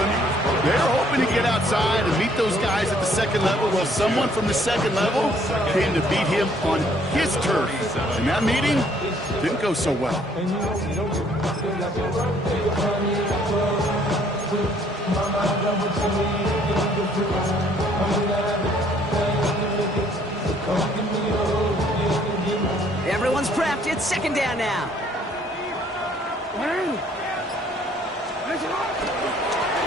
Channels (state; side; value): normal; both; correlation 0.63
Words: to get outside and meet those guys at the second level. Well, someone from the second level came to beat him on his turf. And that meeting didn't go so well. Everyone's prepped. It's second down now.